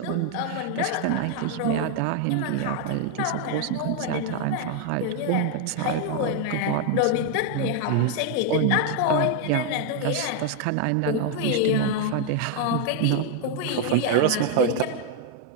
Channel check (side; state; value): both; different; correlation 0.01